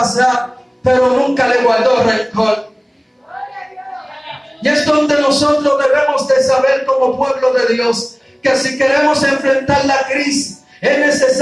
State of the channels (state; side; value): identical; both; correlation 1.00